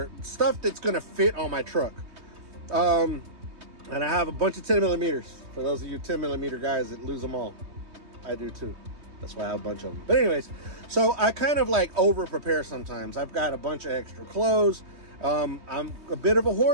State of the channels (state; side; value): late; left; 3.2 ms